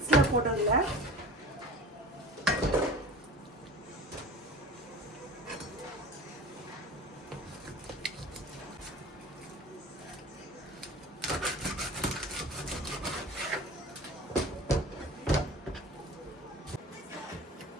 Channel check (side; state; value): both; normal; correlation 0.38